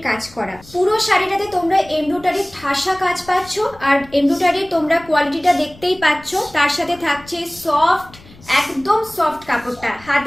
কাজ করা। পুরো শাড়িটাতে তোমরা এমব্রয়ডারির ঠাসা কাজ পাচ্ছ, আর এমব্রয়ডারির তোমরা কোয়ালিটিটা দেখতেই পাচ্ছ। তার সাথে থাকছে সফট, একদম সফট কাপড়টা,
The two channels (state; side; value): noise; left; rumble, 23 dB below the sound